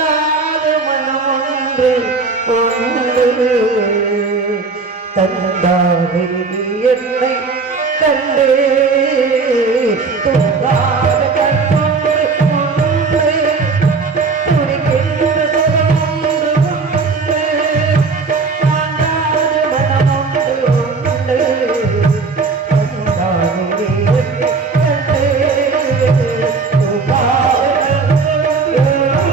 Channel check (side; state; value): left; quieter; 4.4 dB